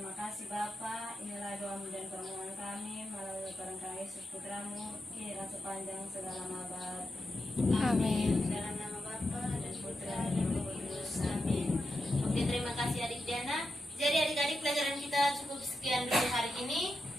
kasih Bapa. Inilah doa dan permohonan kami melalui perenggan Yesus Putramu, kini dan sepanjang segala abad. Amin. Dalam nama Bapa dan Putra dan Roh Kudus. Amin. Oke, terima kasih adik Diana. Jadi adik-adik, pelajaran kita cukup sekian dulu hari ini.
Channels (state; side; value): normal; both; correlation 0.88